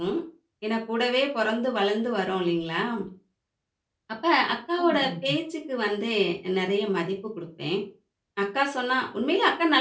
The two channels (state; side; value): identical; both; correlation 1.00